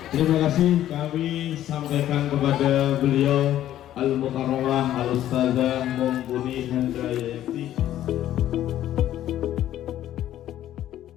Terima kasih kami sampaikan kepada beliau Al-Mukarramah Al-Ustazah Mumpuni Handayati.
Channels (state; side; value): quieter; right; 12.4 dB